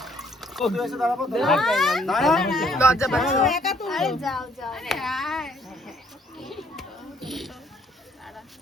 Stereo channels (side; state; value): both; normal; correlation 0.64